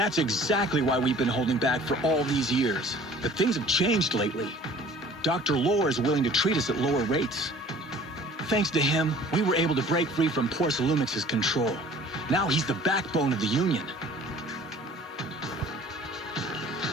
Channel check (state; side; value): normal; both; correlation 0.50